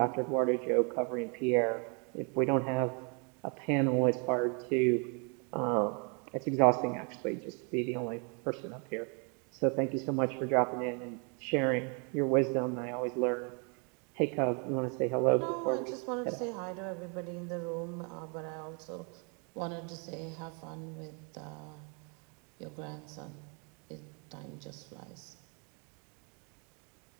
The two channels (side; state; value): left; quieter; 35.9 dB